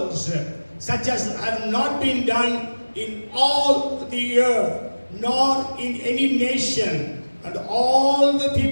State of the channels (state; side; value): inverted; both; correlation -1.00